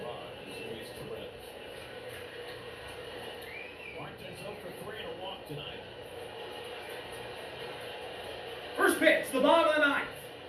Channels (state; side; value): identical; both; correlation 1.00